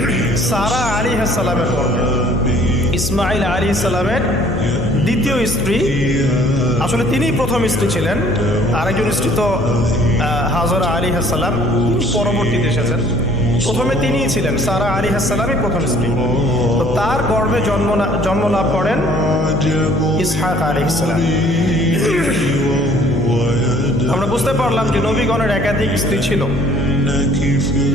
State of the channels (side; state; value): left; noise; hum, 6 dB below the sound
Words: সারা আলাইহিস সালামের গর্ভে। ইসমাইল আলাইহিস সালামের দ্বিতীয় স্ত্রী, আসলে তিনিই প্রথম স্ত্রী ছিলেন। আরেকজন স্ত্রী তো হাজরা আলাইহিস সালাম, তিনি পরবর্তীতে এসেছেন। প্রথমে তিনিই ছিলেন, সারা আলাইহিস সালামই প্রথম স্ত্রী। তো তার গর্ভে জন্ম লাভ করেন ইসহাক আলাইহিস সালাম। আমরা বুঝতে পারলাম যে নবীগণের একাধিক স্ত্রী ছিল।